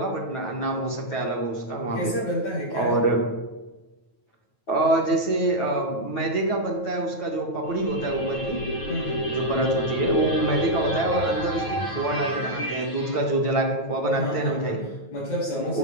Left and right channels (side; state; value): right; late; 9.2 ms